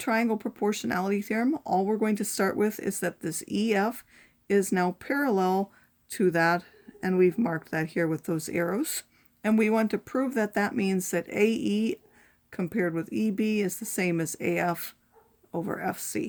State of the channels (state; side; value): identical; both; correlation 1.00